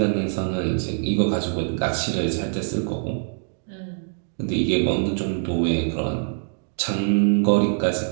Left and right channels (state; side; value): silent; left; digital silence